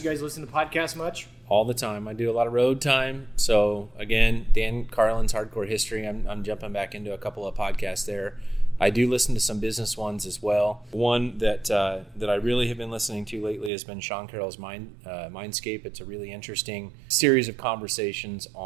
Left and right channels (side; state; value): left; drops out; at 13.7 s